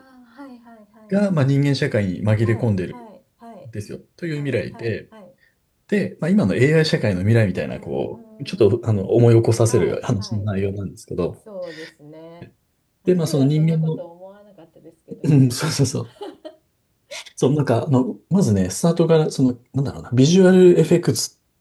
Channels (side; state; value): both; identical; correlation 1.00